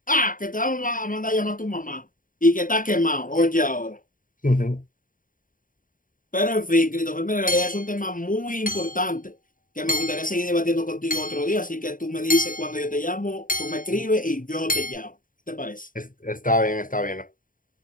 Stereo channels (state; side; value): late; right; 0.39 ms